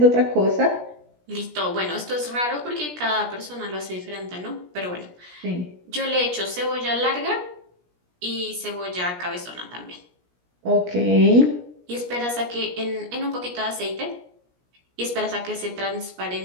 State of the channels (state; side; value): late; left; 17 ms